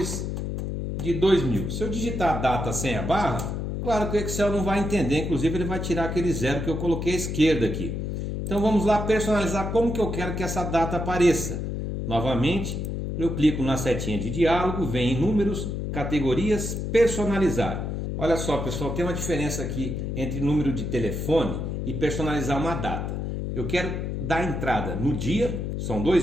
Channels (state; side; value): noise; left; hum, 3 dB below the sound